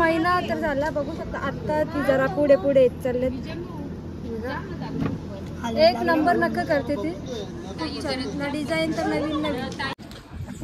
तर झाला बघू शकता आता ती जरा पुढे पुढे येत चालले एक नंबर नख करते ती ना डिझाईन तर नवीन नवीन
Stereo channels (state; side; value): identical; both; correlation 1.00